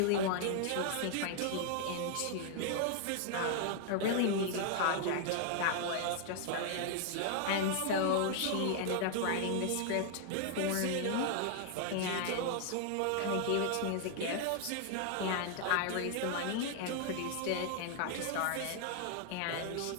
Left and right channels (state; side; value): different; both; correlation 0.00